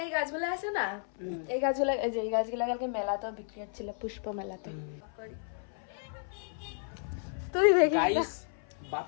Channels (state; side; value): silent; right; 56 dB below the other